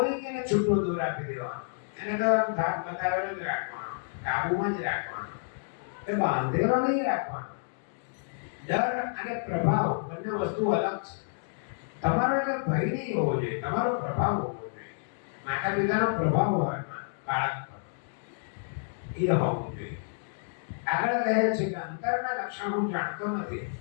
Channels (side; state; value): right; silent; digital silence